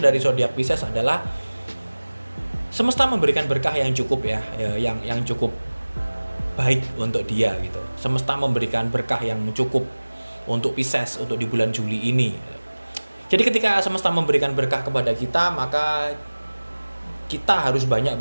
zodiak Pisces adalah semesta memberikan berkah yang cukup ya, yang cukup baik untuk dia gitu. Semesta memberikan berkah yang cukup untuk Pisces untuk di bulan Juli ini. Jadi ketika semesta memberikan berkah kepada kita, maka kita harus banyak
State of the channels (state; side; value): inverted; both; correlation -1.00